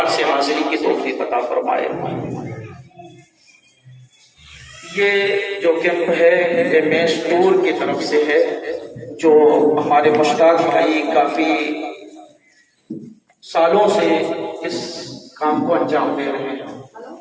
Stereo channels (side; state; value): both; identical; correlation 1.00